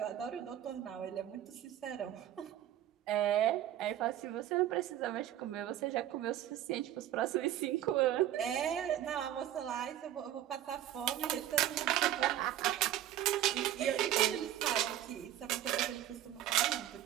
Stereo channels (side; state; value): left; quieter; 12.1 dB